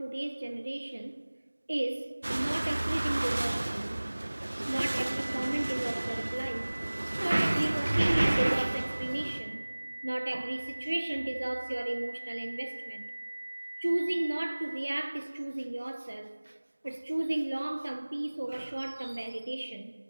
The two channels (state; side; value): inverted; both; correlation -1.00